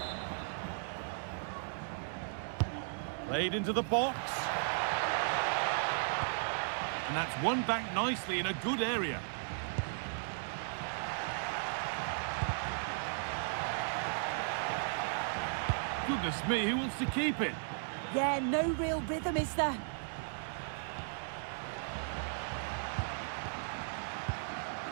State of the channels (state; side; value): silent; left; 54 dB below the other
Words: Played into the box. And that's won back nicely in a good area. Goodness me, who wants to keep it? Yeah, no real rhythm, is there?